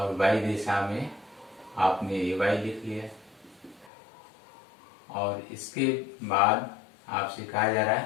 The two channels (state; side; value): drops out; right; at 3.9 s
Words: वाई दिशा में आपने ए वाई लिख लिया। और इसके बाद आपसे कहा जा रहा